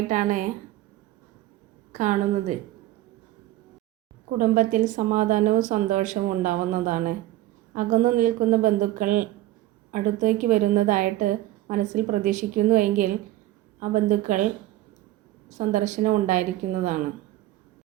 കാണുന്നത്. കുടുംബത്തിൽ സമാധാനവും സന്തോഷവും ഉണ്ടാവുന്നതാണ്. അകന്നു നിൽക്കുന്ന ബന്ധുക്കൾ അടുത്തേക്ക് വരുന്നതായിട്ട് മനസ്സിൽ പ്രതീക്ഷിക്കുന്നു എങ്കിൽ ആ ബന്ധുക്കൾ സന്ദർശനം ഉണ്ടായിരിക്കുന്നതാണ്.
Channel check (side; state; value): left; quieter; 15.1 dB